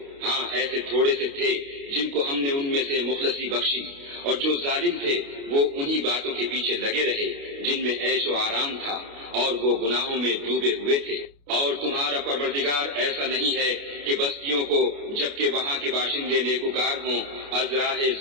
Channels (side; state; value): left; late; 29 ms